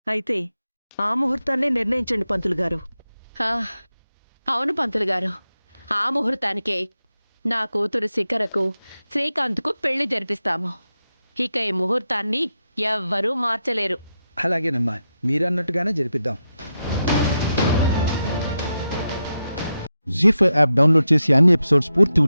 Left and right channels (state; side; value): inverted; both; correlation -0.87